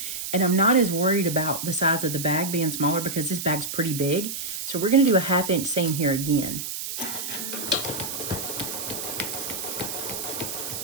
And I'm not as worried about the size of the bag being smaller because this bag's pretty big. So we're going to do a 1/2 inch seam here again.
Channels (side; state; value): right; noise; hiss, 5 dB below the sound